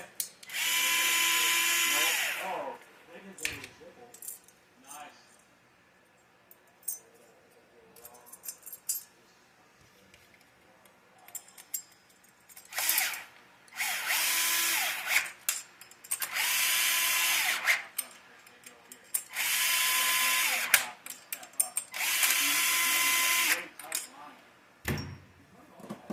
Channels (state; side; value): identical; both; correlation 1.00